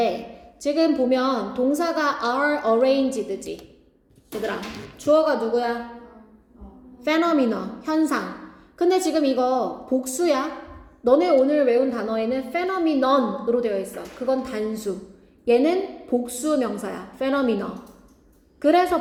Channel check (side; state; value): both; identical; correlation 1.00